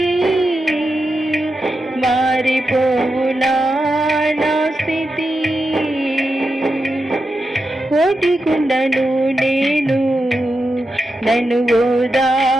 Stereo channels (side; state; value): both; normal; correlation 0.88